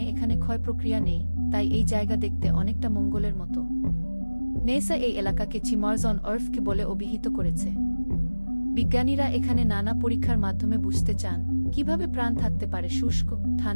এখানে ক্ষয় প্রক্রিয়া নেই, তাই এই জায়গা দেখতে অনেকটা মঙ্গলের মতো। নেসা এই এলাকাকে চিমার্স অন আর্থ বলে অভিহিত করেছে। বিজ্ঞানীরা এখানে নানা পরীক্ষার মাধ্যমে বুঝতে চান কিভাবে প্রাণ থাকতে পারে শুষ্ক,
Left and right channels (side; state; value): both; inverted; correlation -1.00